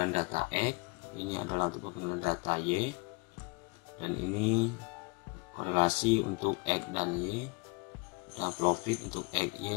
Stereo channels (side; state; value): right; quieter; 28.3 dB